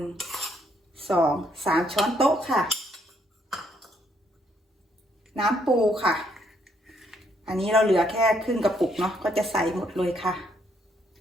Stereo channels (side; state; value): both; normal; correlation 0.71